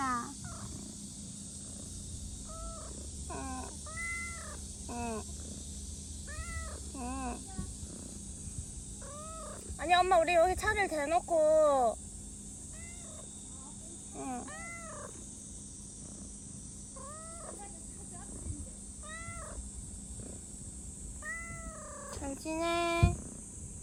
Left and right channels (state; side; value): identical; both; correlation 1.00